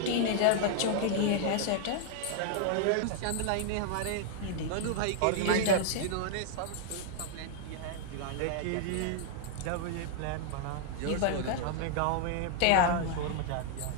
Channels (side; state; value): both; different; correlation -0.01